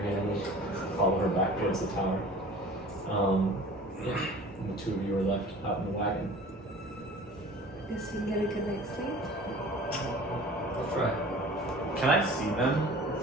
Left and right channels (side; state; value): both; normal; correlation 0.44